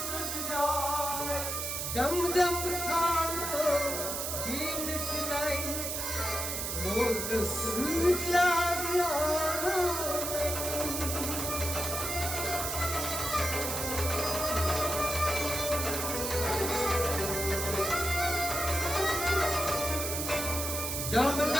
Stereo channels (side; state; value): right; noise; hiss, 3 dB below the sound